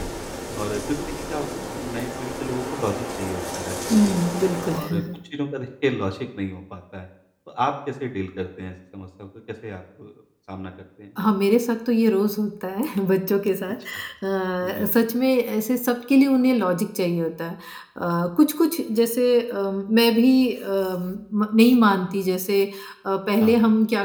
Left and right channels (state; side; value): identical; both; correlation 1.00